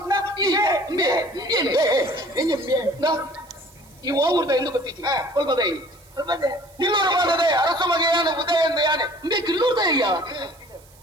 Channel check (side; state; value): right; noise; hiss, 27 dB below the sound